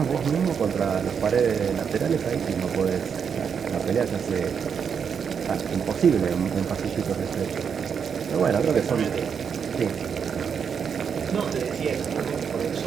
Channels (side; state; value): left; quieter; 6.9 dB